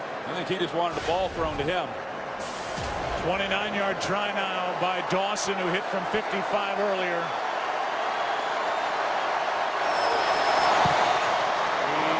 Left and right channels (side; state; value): both; identical; correlation 1.00